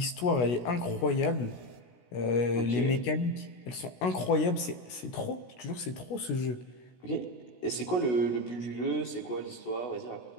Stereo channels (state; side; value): late; right; 16 ms